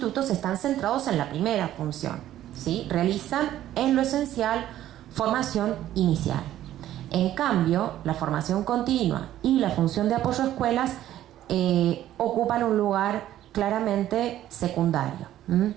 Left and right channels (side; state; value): left; quieter; 12.8 dB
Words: están centrados en la primera función, ¿sí? Realizan en lo esencial formación inicial. En cambio, la formación continua y la función de apoyo a escuelas ocupan un lugar claramente secundario.